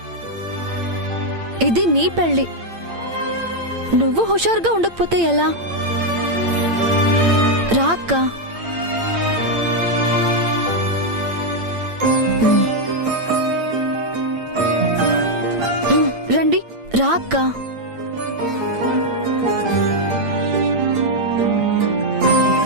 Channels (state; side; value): late; left; 8.8 ms